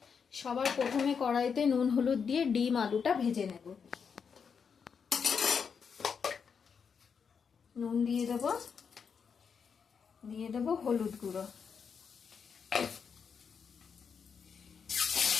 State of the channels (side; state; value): right; quieter; 6.3 dB